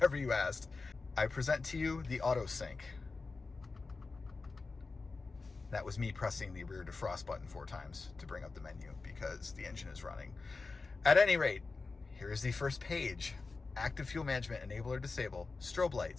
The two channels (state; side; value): quieter; right; 4.0 dB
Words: you asked. I present to you the AutoSync. That was me pressing the rear defrost button 4 times to bring up the menu because the engine is running. At any rate, here is the first page. Active fuel management, enable or disable, strobe